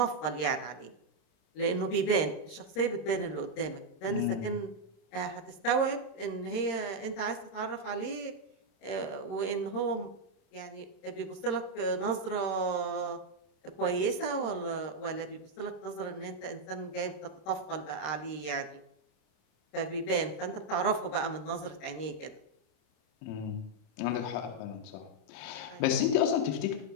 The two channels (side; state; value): right; late; 26 ms